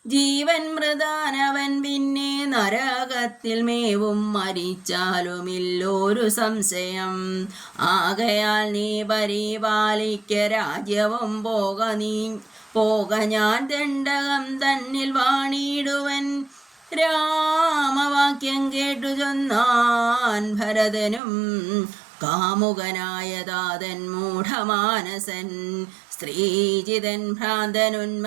ജീവൻ മൃതാനവൻ പിന്നെ നരകത്തിൽ മേവും മരിച്ചാലുമില്ലൊരു സംശയം. ആകയാൽ നീ പരിപാലിക്ക രാജ്യവും പോക ഞാൻ ദണ്ഡകം തന്നിൽ വാണിടുവൻ. രാമവാക്യം കേട്ടു ചൊന്നാൻ ഭരതനും കാമുകനായ താതൻ മൂഢമാനസൻ. സ്ത്രീജിതൻ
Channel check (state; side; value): drops out; left; at 21.2 s